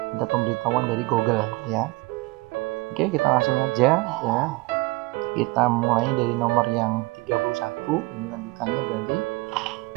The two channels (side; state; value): left; quieter; 24.0 dB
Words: ada pemberitahuan dari Google ya. Oke, kita langsung aja ya. Kita mulai dari nomor yang 31. Ini lanjutannya berarti